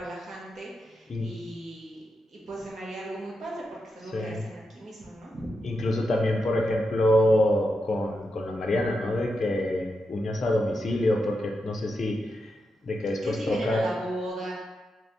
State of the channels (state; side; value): normal; both; correlation 0.86